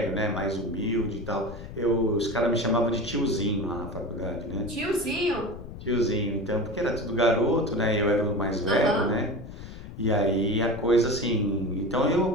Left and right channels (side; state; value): left; noise; rumble, 13 dB below the sound